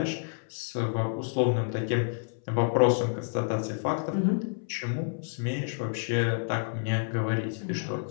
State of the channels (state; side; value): silent; right; 59 dB below the other